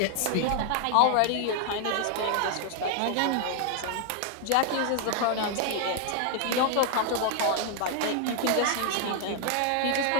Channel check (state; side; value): different; both; correlation 0.00